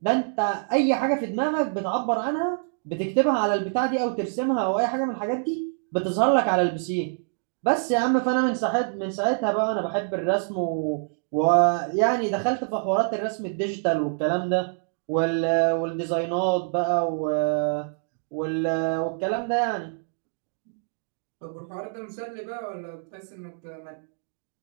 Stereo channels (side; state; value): left; silent; digital silence